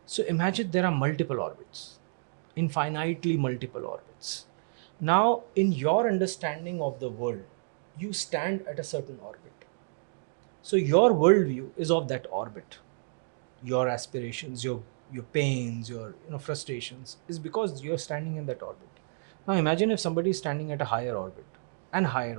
So imagine there are multiple orbits, infinitely multiple orbits. Now, in your understanding of the world, you stand at a certain orbit. So your worldview is of that orbit. Your aspirations, your pains, your frustrations is because you're standing in that orbit. Now imagine if somebody is standing at a higher orbit, and higher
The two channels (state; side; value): silent; left; digital silence